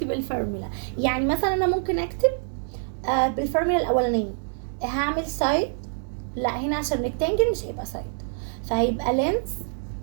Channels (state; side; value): silent; left; 61 dB below the other